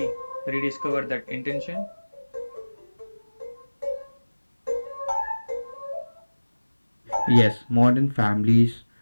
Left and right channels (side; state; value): both; inverted; correlation -1.00